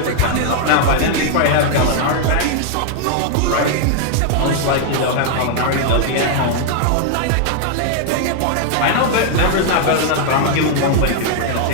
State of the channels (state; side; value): different; both; correlation 0.00